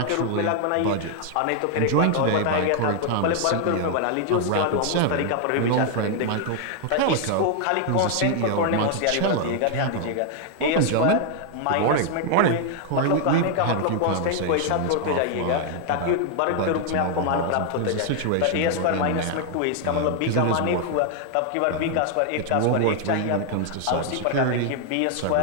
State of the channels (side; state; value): both; different; correlation 0.00